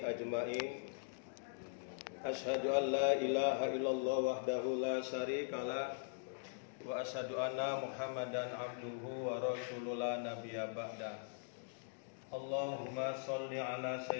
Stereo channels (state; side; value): silent; right; digital silence